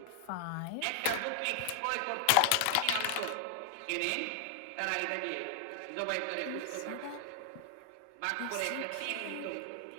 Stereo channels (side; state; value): both; different; correlation 0.00